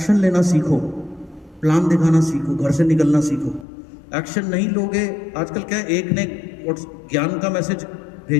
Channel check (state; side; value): drops out; right; at 3.7 s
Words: लेना सीखो, प्लान दिखाना सीखो, घर से निकलना सीखो। एक्शन नहीं लोगे, आजकल क्या है, एक ने ज्ञान का मैसेज